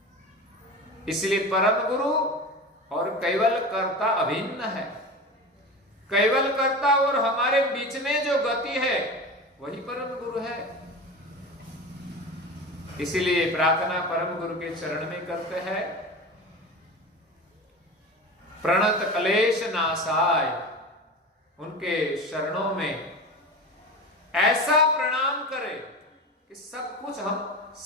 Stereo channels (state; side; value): normal; both; correlation 0.30